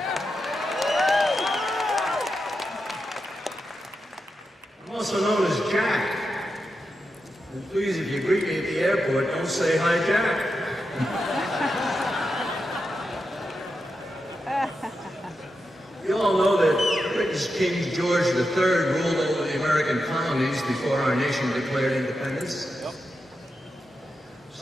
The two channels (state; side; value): normal; both; correlation 0.88